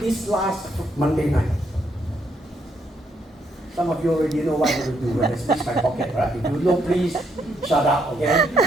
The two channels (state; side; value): normal; both; correlation 0.74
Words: last Monday night. Some of you already know what I'm going to do when I squeeze my pocket, right? If you know, please shut up, okay?